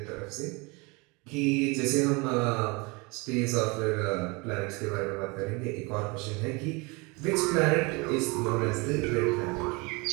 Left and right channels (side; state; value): left; quieter; 27.5 dB